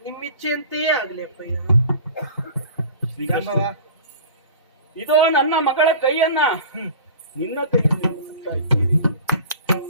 ನಿಮ್ಮಿಚ್ಛೆಯಂತೆಯೇ ಆಗ್ಲಿ ಅಪ್ಪಯ್ಯ. ಇದೋ ನನ್ನ ಮಗಳ ಕೈಯನ್ನ ನಿನ್ನ ಕೈಯಲ್ಲಿ ಮುಗಿಸುತ್ತಾ ಇದ್ದೇನೆ.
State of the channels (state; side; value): inverted; both; correlation -0.40